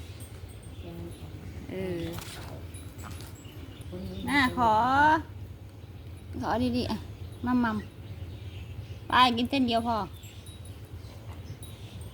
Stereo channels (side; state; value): both; identical; correlation 1.00